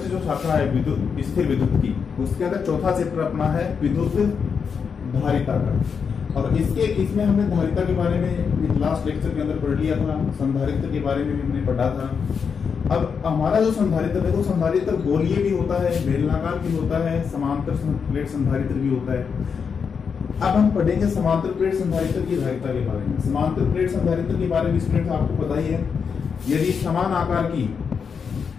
जो शाखा है विद्युत स्थिर विद्युत की, उसके अंदर चौथा चैप्टर अपना है विद्युत धारिता का। और इसमें हमने धारिता के बारे में लास्ट लेक्चर के अंदर पढ़ लिया था, संधारित्र के बारे में भी हमने पढ़ा था। अब हमारा जो संधारित्र है वो संधारित्र गोलीय भी होता है, बेलनाकार भी होता है, समांतर प्लेट संधारित्र भी होता है। अब हम पढ़ेंगे समांतर प्लेट संधारित्र की धारिता के बारे में। समांतर प्लेट संधारित्र के बारे में स्टूडेंट आपको पता ही है, यदि समान आकार की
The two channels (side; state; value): right; quieter; 6.2 dB